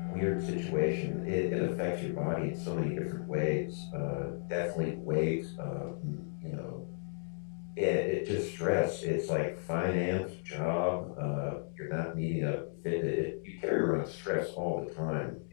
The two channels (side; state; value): right; silent; digital silence